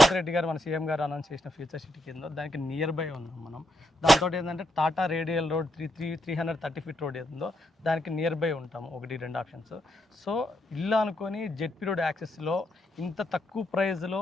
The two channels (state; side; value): normal; both; correlation 0.80